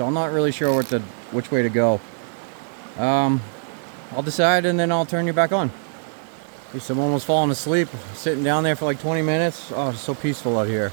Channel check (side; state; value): left; silent; digital silence